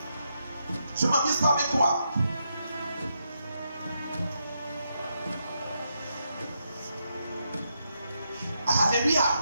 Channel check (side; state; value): both; inverted; correlation -0.81